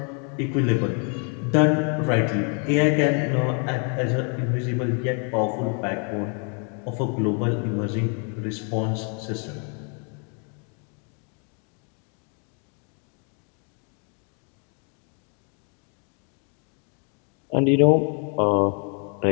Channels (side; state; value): right; quieter; 39.4 dB